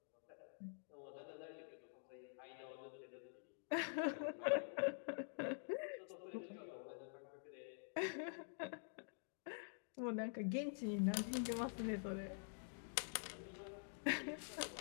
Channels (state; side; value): silent; right; digital silence